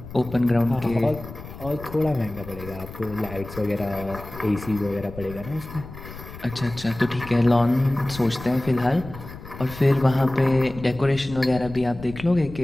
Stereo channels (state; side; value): noise; left; rumble, 14 dB below the sound